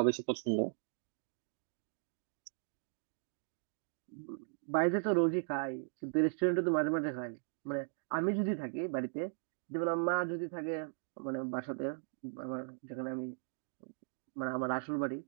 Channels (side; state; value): left; silent; digital silence